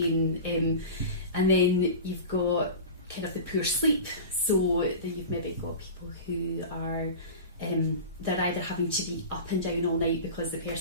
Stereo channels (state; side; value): inverted; both; correlation -0.31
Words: and then you've got kind of the poor sleep. So then you've maybe got people who are they're either having to be up and down all night because the